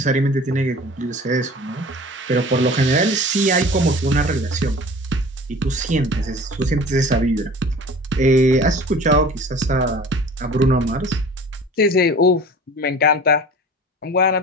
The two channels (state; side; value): normal; both; correlation 0.42